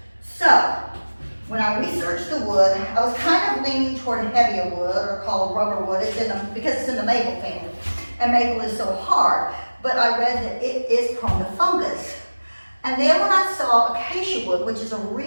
So when I researched the wood, I was kind of leaning toward heavier wood, or called rubber wood, because it's in the maple family, and maple is so hard. But I read that it is prone to fungus. And then when I saw acacia wood, which is a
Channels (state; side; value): inverted; both; correlation -1.00